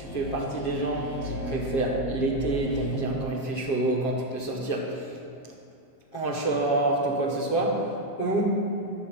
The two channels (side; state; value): right; late; 7.4 ms